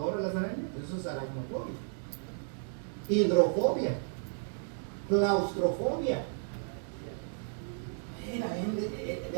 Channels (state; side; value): silent; left; digital silence